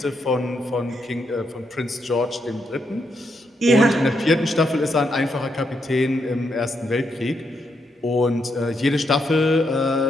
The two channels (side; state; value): both; normal; correlation 0.80